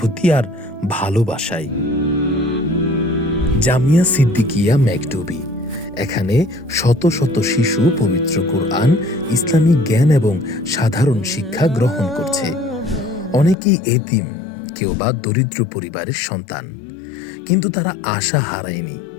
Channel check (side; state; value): right; drops out; at 13.6 s